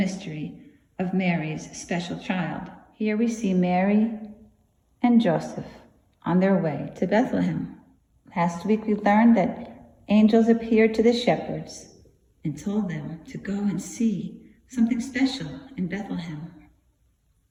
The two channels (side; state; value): both; identical; correlation 1.00